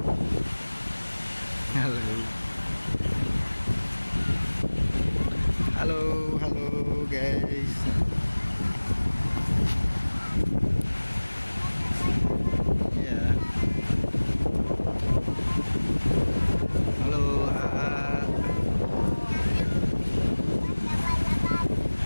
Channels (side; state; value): both; inverted; correlation -1.00